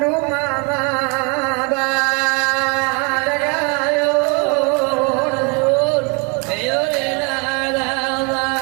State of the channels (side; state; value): left; quieter; 31.5 dB